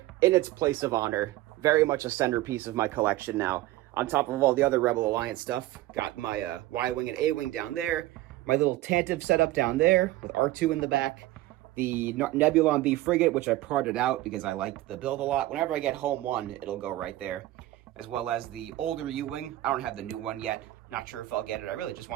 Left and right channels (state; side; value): quieter; left; 16.6 dB